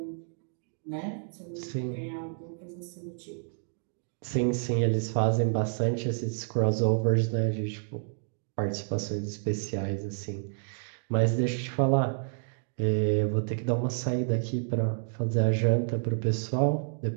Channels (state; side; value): silent; left; digital silence